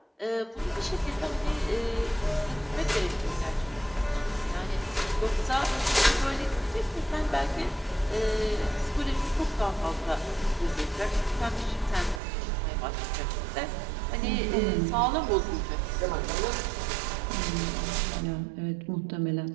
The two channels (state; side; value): drops out; left; at 12.2 s